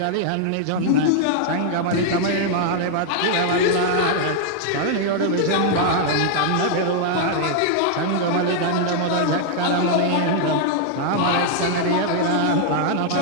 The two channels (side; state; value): both; different; correlation 0.00